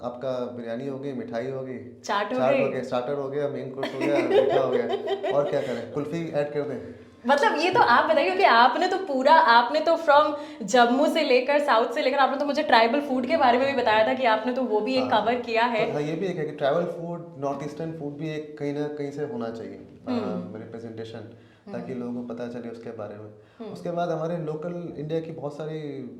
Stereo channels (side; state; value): both; identical; correlation 1.00